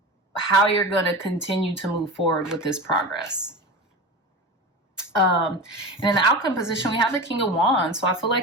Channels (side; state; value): both; normal; correlation 0.28